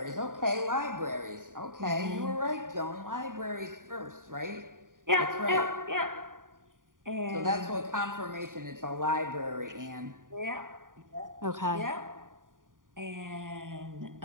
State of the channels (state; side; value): late; left; 0.89 ms